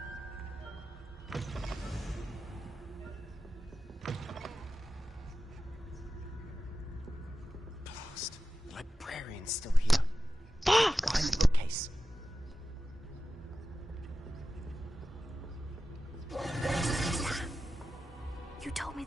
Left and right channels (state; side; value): normal; both; correlation 0.93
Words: Blast. The librarian's still here. Fuck! Behind the bookcase. You told me